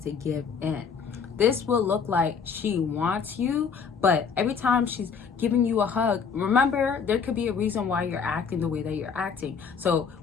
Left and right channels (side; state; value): right; quieter; 6.1 dB